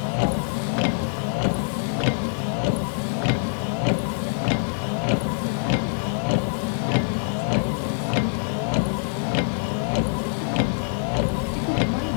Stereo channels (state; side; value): silent; right; 62 dB below the other